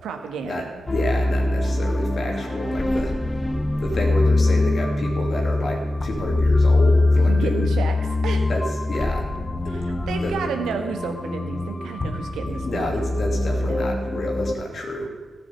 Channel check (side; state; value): both; normal; correlation 0.93